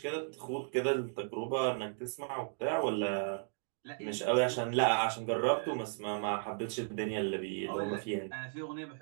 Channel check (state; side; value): silent; left; digital silence